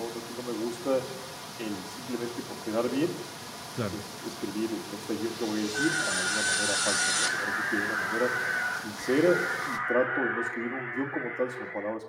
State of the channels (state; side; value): identical; both; correlation 1.00